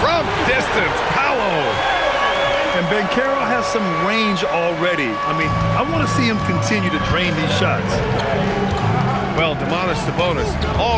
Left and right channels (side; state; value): both; identical; correlation 1.00